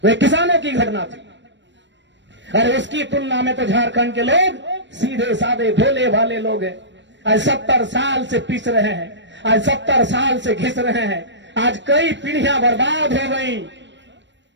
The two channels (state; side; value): late; left; 0.53 ms